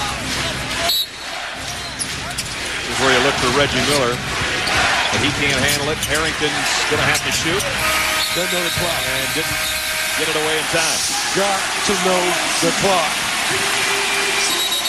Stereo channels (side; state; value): both; identical; correlation 1.00